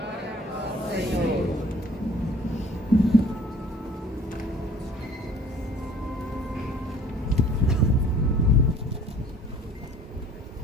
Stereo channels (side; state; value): both; normal; correlation 0.52